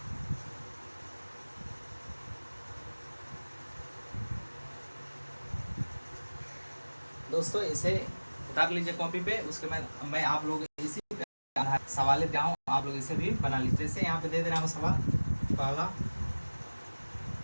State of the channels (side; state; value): both; inverted; correlation -1.00